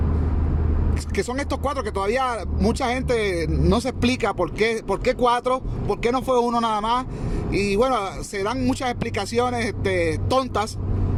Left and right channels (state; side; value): identical; both; correlation 1.00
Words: que son estos 4 que todavía mucha gente no se explica por qué 4, por qué no fue uno nada más. Y bueno, se dan muchas explicaciones tontas